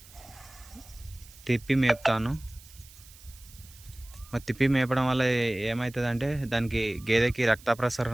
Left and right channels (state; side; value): noise; right; hiss, 22 dB below the sound